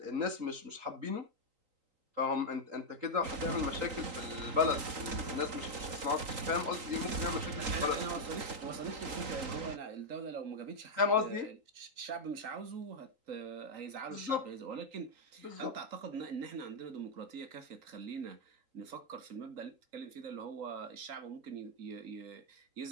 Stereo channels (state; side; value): late; left; 3.8 ms